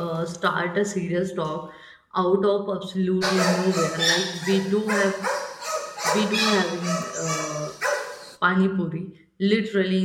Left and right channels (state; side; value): identical; both; correlation 1.00